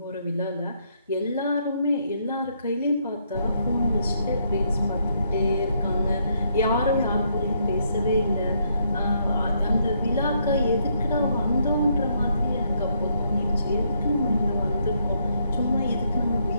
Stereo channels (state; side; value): inverted; both; correlation -0.74